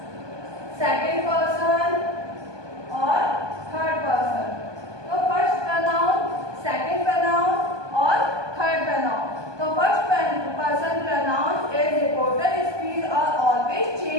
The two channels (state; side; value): late; left; 1.2 ms